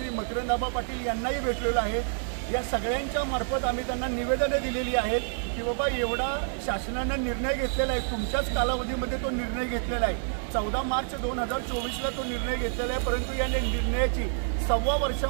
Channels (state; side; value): silent; left; digital silence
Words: मकरंदाबा पाटील यांनाही भेटलेलं आहे। या सगळ्यांच्या मार्फत आम्ही त्यांना निवेदने दिलेली आहेत की बाबा एवढा शासनानं निर्णय घेतलेला आहे, तुमच्याच कालावधीमध्ये तो निर्णय घेतलेला आहे। 14 मार्च 2024ला तो निर्णय घेतलेला आहे, परंतु या निर्णयाची 1.25